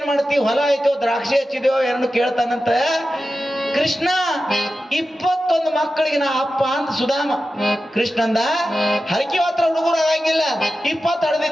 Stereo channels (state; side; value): normal; both; correlation 0.92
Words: ಮಾಡ್ತೀವಿ, ಹೊಲ ಆಯ್ತೋ ದ್ರಾಕ್ಷಿ ಹಚ್ಚಿದ್ಯೋ ಎರಡು ಕೇಳ್ತಾನಂತ. ಕೃಷ್ಣ 21 ಮಕ್ಕಳಿಗೆ ನಾ ಅಪ್ಪ ಅಂತ ಸುಧಾಮ. ಕೃಷ್ಣಂದ ಹರಕೆ ಹತ್ರ ಹುಡುಗರು ಆಗಂಗಿಲ್ಲ, 20